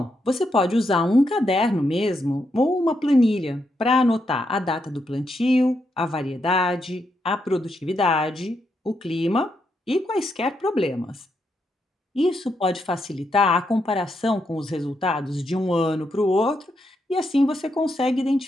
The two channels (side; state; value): both; normal; correlation 0.81